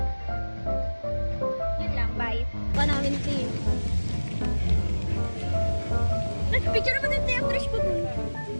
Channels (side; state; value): both; inverted; correlation -1.00